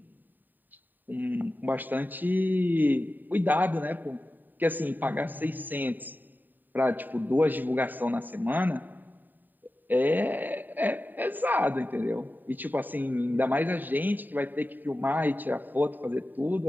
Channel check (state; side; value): late; left; 0.089 ms